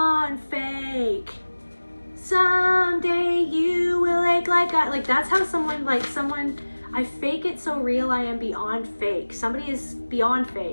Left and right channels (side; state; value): both; inverted; correlation -1.00